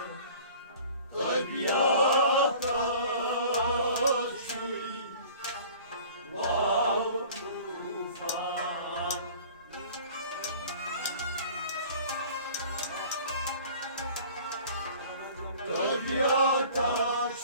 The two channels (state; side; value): inverted; both; correlation -0.46